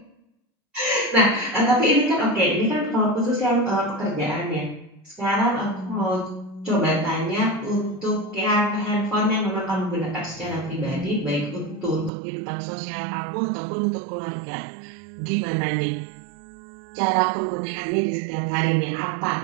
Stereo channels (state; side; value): drops out; left; at 12.1 s